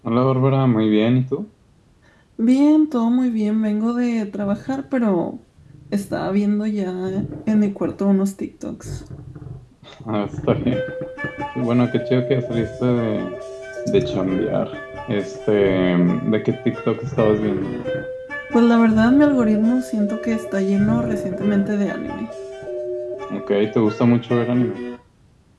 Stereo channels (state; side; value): identical; both; correlation 1.00